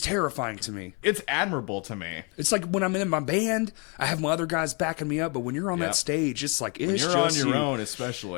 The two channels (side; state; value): right; quieter; 33.7 dB